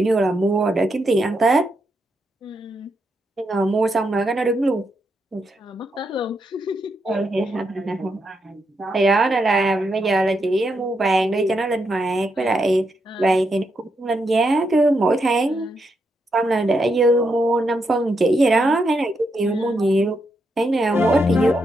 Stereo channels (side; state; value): both; normal; correlation 0.81